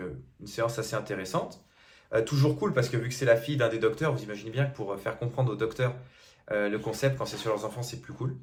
une séance assez intéressante. Toujours cool parce que vu que c'est la fille d'un des docteurs, vous imaginez bien que pour faire comprendre aux docteurs le concept, quand c'est sur leurs enfants, c'est plus cool.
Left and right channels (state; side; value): identical; both; correlation 1.00